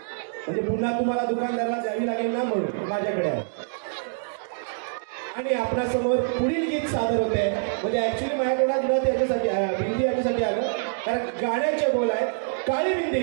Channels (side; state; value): left; silent; digital silence